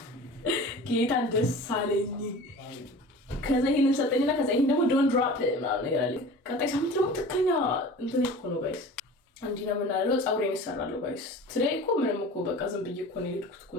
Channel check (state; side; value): normal; both; correlation 0.39